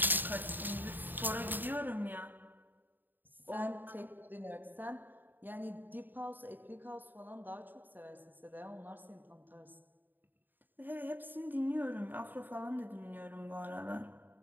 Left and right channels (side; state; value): left; late; 0.091 ms